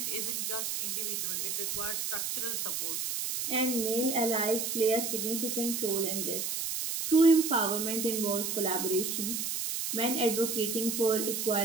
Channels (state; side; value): noise; right; hiss, 2 dB below the sound